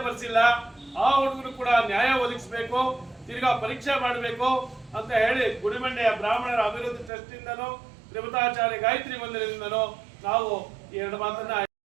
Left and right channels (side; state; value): left; drops out; at 7.1 s